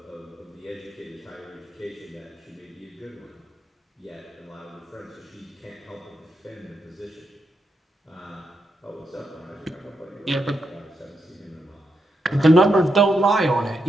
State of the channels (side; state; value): both; normal; correlation 0.83